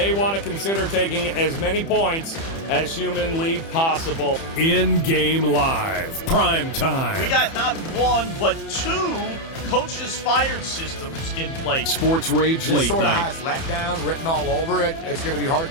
want to consider taking as many points as humanly possible. In-game live, prime time. We got not 1, but 2 coaches fired systems in place. Sports Rage this late sort of night. has letdown written all over it. It's going to be hard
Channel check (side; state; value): right; late; 30 ms